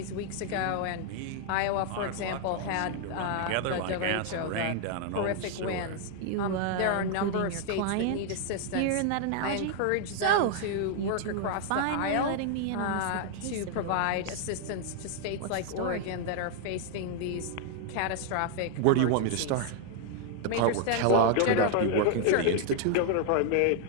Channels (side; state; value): both; different; correlation 0.00